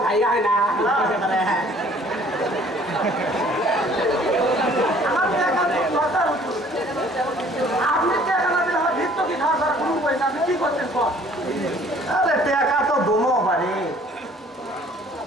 ভাই হয় না আমার টাকা তো দরকার হতো। আপনি টাকা না দিলে আমার ভিত্ত কি খাওয়া ছাড়া কোনো উপায় না। আপনি কি করতেন কর আরে টাকা তো দমো পারে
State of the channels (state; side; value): normal; both; correlation 0.55